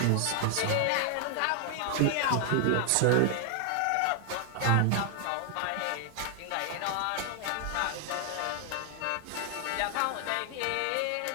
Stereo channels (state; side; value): different; both; correlation 0.00